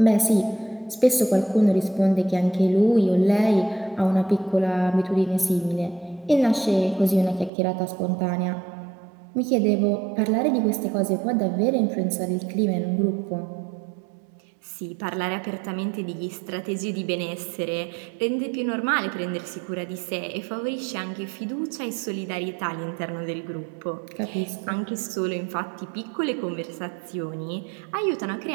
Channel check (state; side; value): drops out; left; at 7.5 s